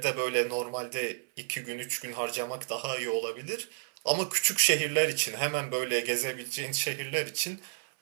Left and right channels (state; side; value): silent; left; 57 dB below the other